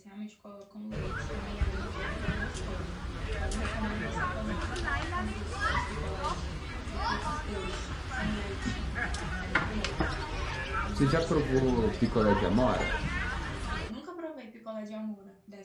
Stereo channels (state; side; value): identical; both; correlation 1.00